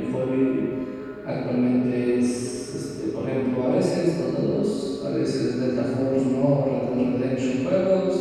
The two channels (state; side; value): identical; both; correlation 1.00